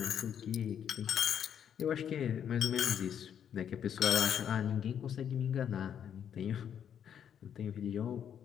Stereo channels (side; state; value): right; quieter; 8.7 dB